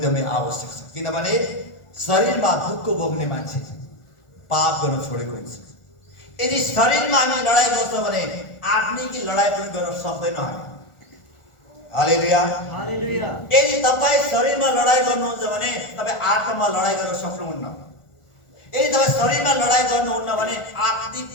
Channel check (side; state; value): right; late; 1.4 ms